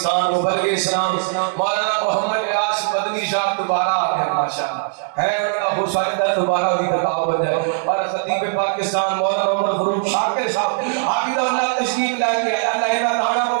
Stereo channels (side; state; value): left; silent; digital silence